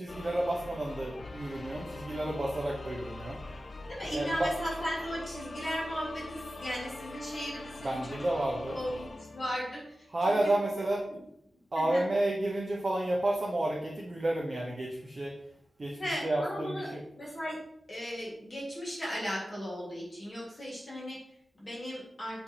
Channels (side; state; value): both; normal; correlation 0.94